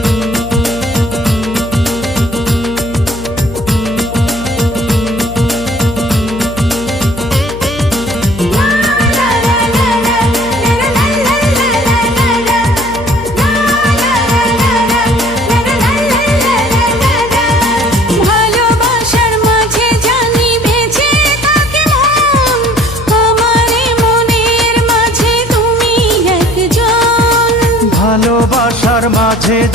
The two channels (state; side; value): noise; left; hum, 13 dB below the sound